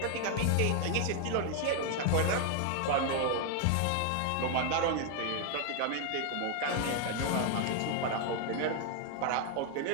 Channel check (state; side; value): different; both; correlation 0.00